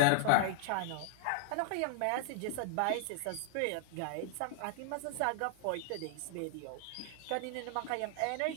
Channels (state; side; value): different; both; correlation -0.01